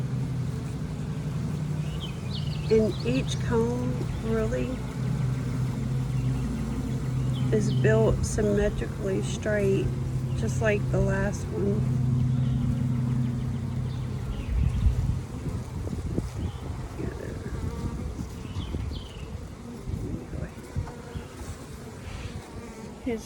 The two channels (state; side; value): identical; both; correlation 1.00